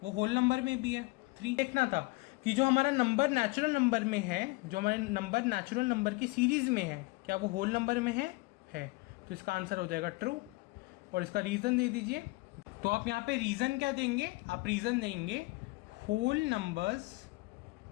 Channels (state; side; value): quieter; right; 23.8 dB